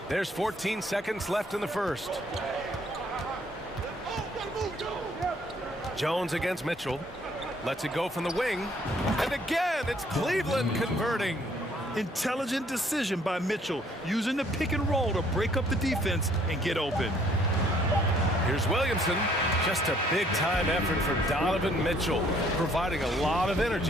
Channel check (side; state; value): both; normal; correlation 0.63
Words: There's 14 seconds left in the first. Jones against Mitchell. Lets it go from the wing. And again, it's Cleveland converting. Intelligent decision by Mitchell, using the pick and roll to break up the defense and get open. Here's Williamson. Just a big-time effort for Donovan Mitchell, providing a lot of